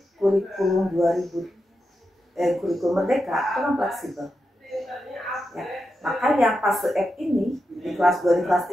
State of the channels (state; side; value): normal; both; correlation 0.88